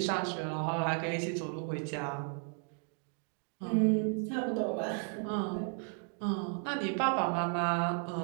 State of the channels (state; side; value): quieter; left; 39.1 dB